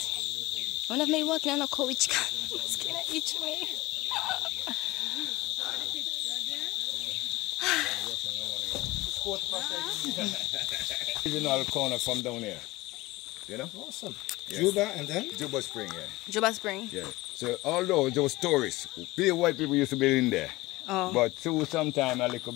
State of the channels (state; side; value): quieter; right; 19.8 dB